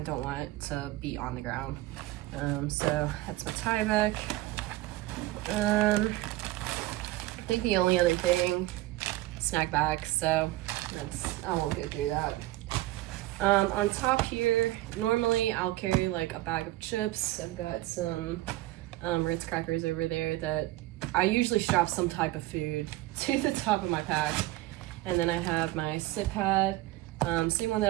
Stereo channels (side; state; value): left; quieter; 17.3 dB